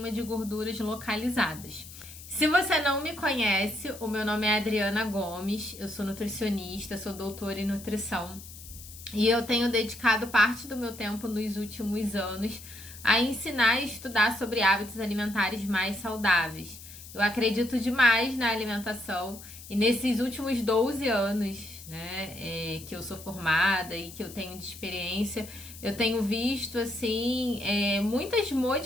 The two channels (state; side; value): noise; left; hiss, 16 dB below the sound